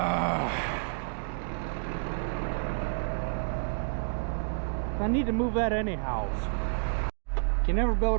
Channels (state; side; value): silent; left; digital silence